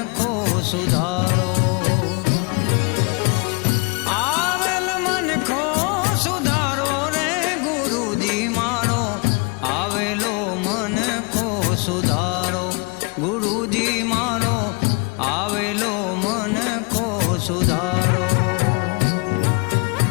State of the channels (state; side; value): quieter; right; 31.6 dB